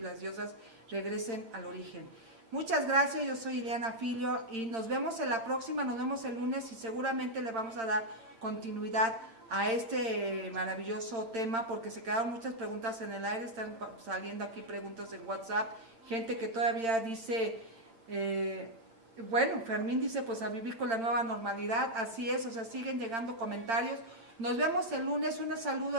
diosas regresen al origen. Muchas gracias, yo soy Ileana Filio y nos vemos en la próxima, nos vemos el lunes y seguramente le vamos a dar continuidad a este maravilloso tema porque se quedaron muchas preguntas en el aire, están saliendo aquí preguntas en WhatsApp, gente que todavía dice, bueno, Fermín dice pues a vivir con la nueva normalidad, así es, o sea, siguen llegando comentarios. Nos vemos el lunes, un saludo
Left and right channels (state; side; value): late; left; 8.8 ms